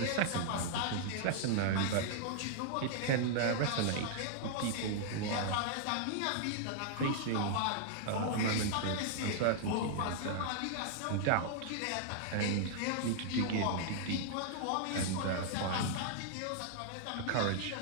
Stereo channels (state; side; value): different; both; correlation -0.01